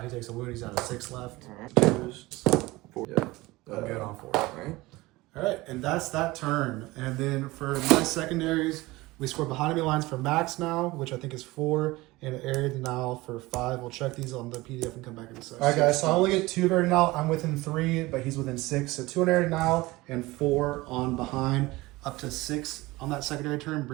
He takes a wound, he's down to 6 left. Alright. 4. Yeah. I'm good on 4. Alright. All right, and that's that turn. And then for my secondaries, we score behind enemy lines for max now, which I think is 4, and area denial for 5. We'll check these on the PDF and come back in a second. All right, guys, so I only get 2 of area denial. I'm within 3, but he's within 6. So 2 on area denial and 4 on behind, up to 6 on that secondary turn,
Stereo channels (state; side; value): quieter; left; 20.4 dB